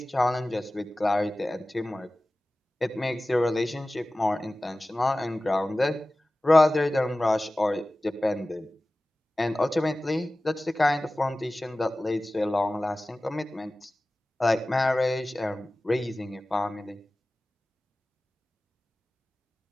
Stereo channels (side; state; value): both; normal; correlation 0.97